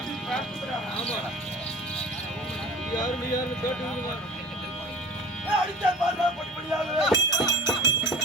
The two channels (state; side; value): normal; both; correlation 0.40